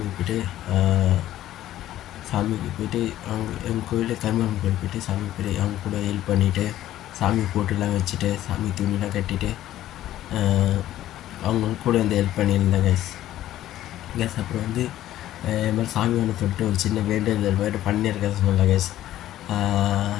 போய்ட்டு அவங்க எங்கள் கோயிலில் கருமாரியம்மன் கோயில் போய்ட்டு சாமிக்கு போய்ட்டு அவங்க கூட ஹெல்ப் பண்ணிவிட்டு சாமி போட்டுலாம் வச்சுட்டு சாமி துணிலாம் கட்டிட்டு அவங்க கூட வந்து ஹெல்ப் பண்ணியிருந்தேன் கேஸ். அப்புறம் வந்து இது மாதிரி சாமி ஒன்று சொல்லிட்டு ஒரு சின்ன வேண்டுதல் மாதிரி பண்ணியிருக்கேன் சொன்னல கேஸ்.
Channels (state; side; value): quieter; right; 13.4 dB